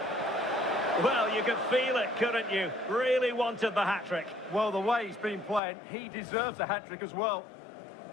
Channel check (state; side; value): drops out; right; at 5.6 s